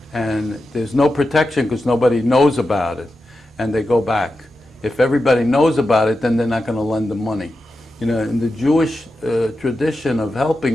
and there's no protection because nobody knows about it, and they go back. If everybody knows about it, then they're not going to lend them money. You know, in the Jewish tradition of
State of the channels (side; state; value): both; normal; correlation 0.90